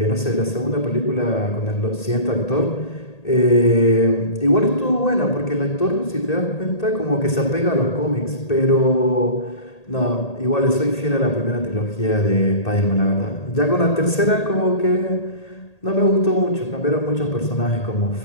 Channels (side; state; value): right; late; 1.8 ms